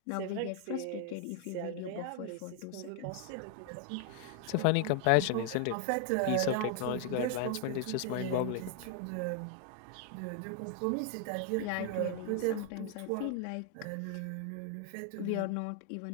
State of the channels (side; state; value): both; different; correlation 0.00